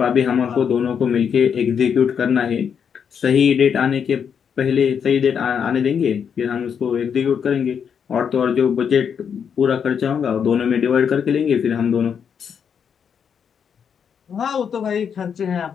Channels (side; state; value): right; quieter; 7.3 dB